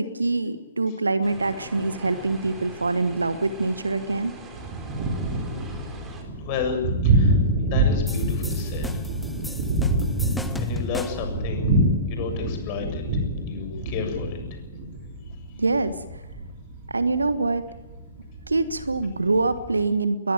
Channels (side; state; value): both; inverted; correlation -0.50